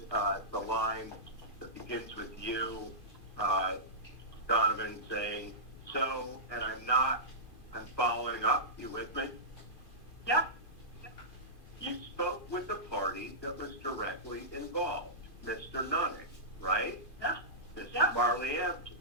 the line that begins with you, Donovan, saying, so, and I'm following up, you with me? Yep. You spoke with the party that was directly involved, Mr. Nutting, right? Yeah. Mr. Yeah. Marley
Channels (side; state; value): right; late; 2.5 ms